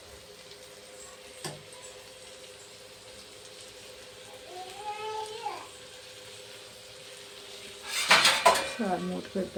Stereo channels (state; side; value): identical; both; correlation 1.00